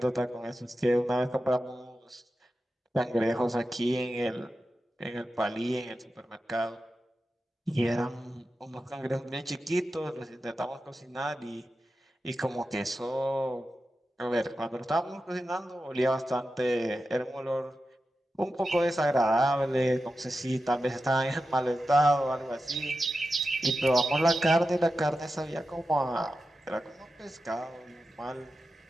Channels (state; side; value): normal; both; correlation 0.91